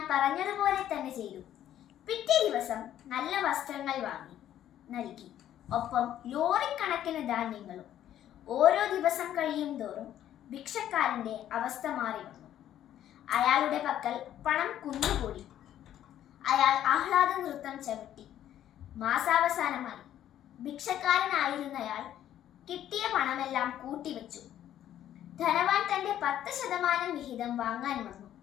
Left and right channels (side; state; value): right; quieter; 11.4 dB